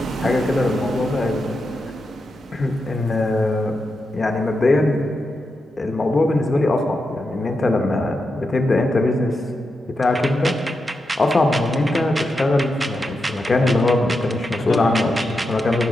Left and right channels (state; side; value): normal; both; correlation 0.87